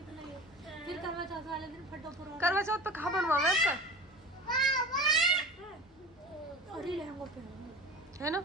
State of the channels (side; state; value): both; normal; correlation 0.35